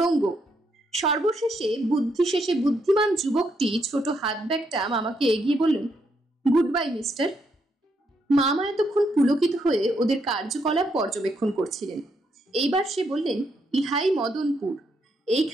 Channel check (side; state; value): both; normal; correlation 0.77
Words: সর্বশেষে বুদ্ধিশেষে বুদ্ধিমান যুবকটি ছোট হাত ব্যাগটা মামাকে এগিয়ে বললেন, গুড বাই মিস্টার। মামা এতক্ষণ পুলকিত হয়ে ওদের কার্যকলাপ পর্যবেক্ষণ করছিলেন। এইবার সে বললেন, ইহাই মদনপুর,